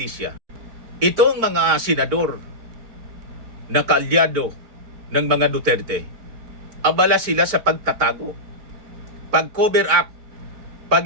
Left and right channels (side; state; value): left; late; 4.5 ms